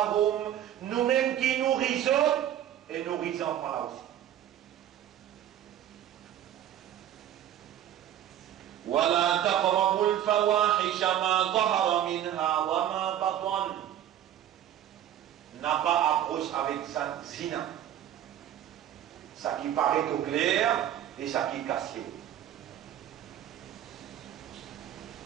nous-mêmes qui nourrissons et nourrissons pas aussi. ولا تقربوا الفواحش ما ظهر منها وما بطن, n'a pas approche avec sa zina, ça qui paraît au clair et ça qui est caché.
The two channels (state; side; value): quieter; left; 11.2 dB